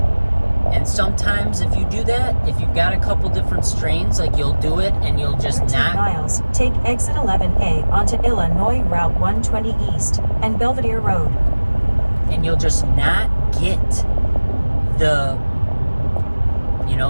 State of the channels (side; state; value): both; inverted; correlation -1.00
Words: And sometimes if you do that, if you've got a couple different strains, like, you'll do it and you'll just 13 not... miles, take exit 11A onto Illinois Route 120 East and Belvedere Road. And you'll just not get the, you